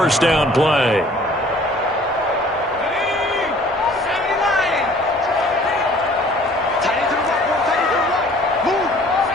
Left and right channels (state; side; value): normal; both; correlation 0.53